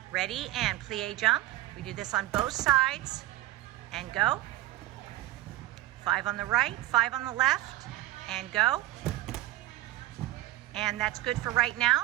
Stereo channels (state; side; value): quieter; left; 16.2 dB